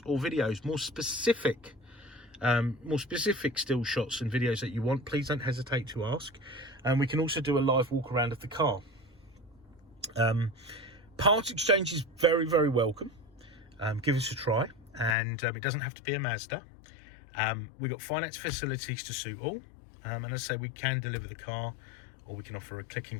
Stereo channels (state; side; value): drops out; right; at 15.2 s